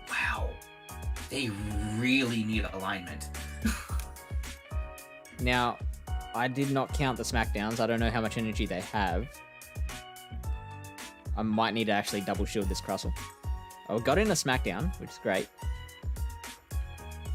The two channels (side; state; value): both; identical; correlation 1.00